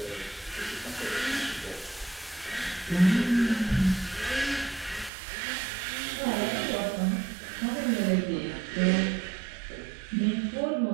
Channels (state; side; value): drops out; left; at 5.1 s